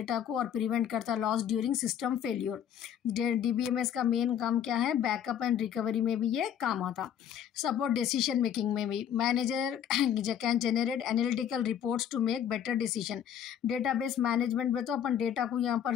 को और प्रिवेंट करता loss during system failure. DBMS का मेन काम क्या है? बैकअप एंड रिकवरी में भी ये काम आता। सपोर्ट डिसीजन मेकिंग में भी। Manager can generate analytical reports to make better decision. Database management में तो अपन डेटा को यहाँ पर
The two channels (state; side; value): quieter; right; 9.4 dB